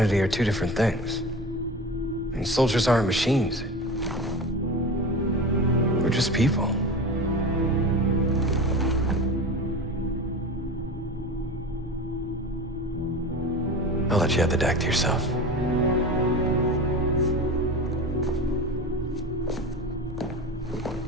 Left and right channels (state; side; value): noise; right; hum, 23 dB below the sound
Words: are two different things. I mean, soldiers aren't machines. We're just people. I'll let you have the deck to yourself.